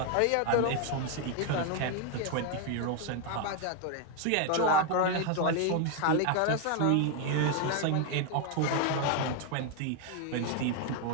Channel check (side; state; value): both; different; correlation 0.01